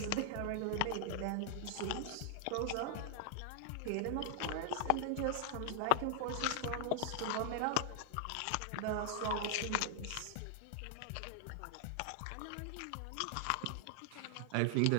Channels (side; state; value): both; different; correlation 0.00